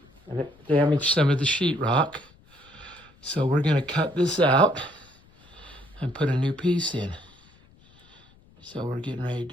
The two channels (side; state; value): left; noise; rumble, 28 dB below the sound